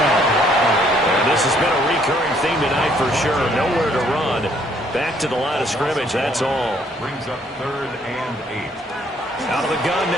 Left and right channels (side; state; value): both; normal; correlation 0.65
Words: And this has been a recurring theme tonight for sure. Nowhere to run. Back to the line of scrimmage, that's all. Brings up 3rd and 8. Out of the gun